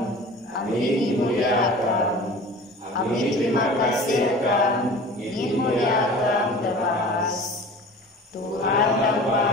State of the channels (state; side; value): normal; both; correlation 0.40